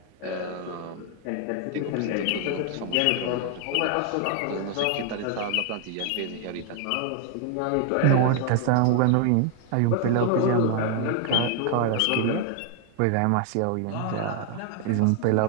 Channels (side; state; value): both; different; correlation 0.00